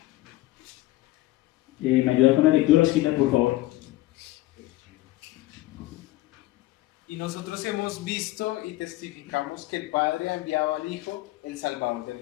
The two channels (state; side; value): quieter; right; 17.5 dB